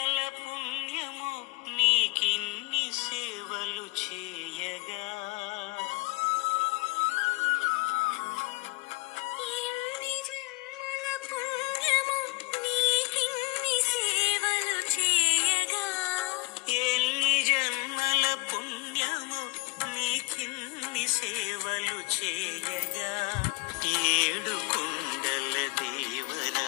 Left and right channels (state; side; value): quieter; right; 25.3 dB